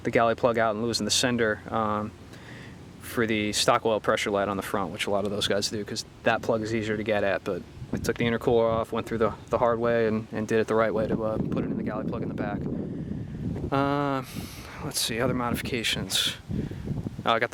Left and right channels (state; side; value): identical; both; correlation 1.00